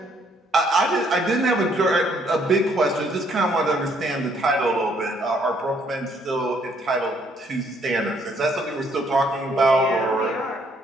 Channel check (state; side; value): normal; both; correlation 0.67